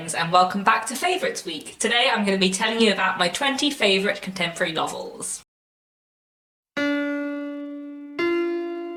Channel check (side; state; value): both; identical; correlation 1.00